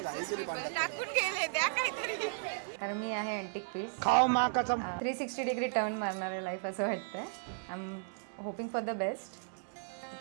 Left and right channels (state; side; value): silent; left; digital silence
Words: टाकून गेले द्या काहीतरी. कारण मी आहे अँटिक पीस. खाओ माँ कसम. 360 डिग्री टर्न मारणार आहे लाईफ असं वाटतंय. I am hoping for the best.